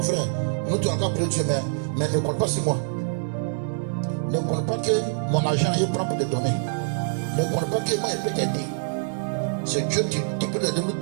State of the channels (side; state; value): left; silent; 62 dB below the other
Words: frère, nous tu as encore prié Dieu, mais ne compte pas sur moi. Ne compte pas que mon argent est prend pour te donner. Ne compte pas que moi je peux t'aider. C'est Dieu qui peut aider nous